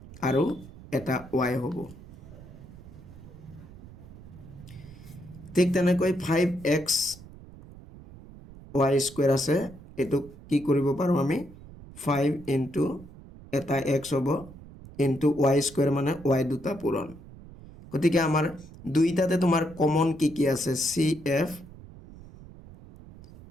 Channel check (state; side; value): noise; right; rumble, 18 dB below the sound